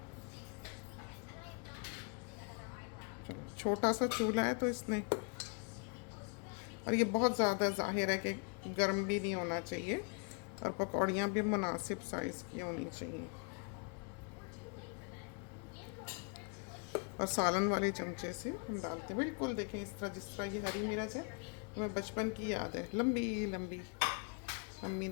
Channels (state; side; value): quieter; right; 38.4 dB